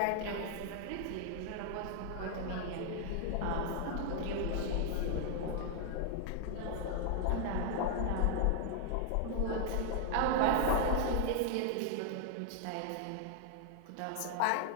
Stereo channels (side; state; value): both; different; correlation 0.00